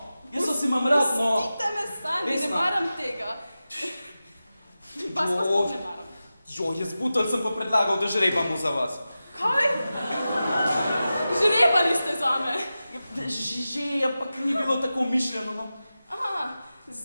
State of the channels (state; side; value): inverted; both; correlation -0.94